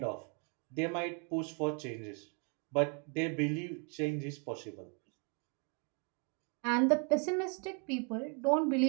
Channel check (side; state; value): left; quieter; 38.0 dB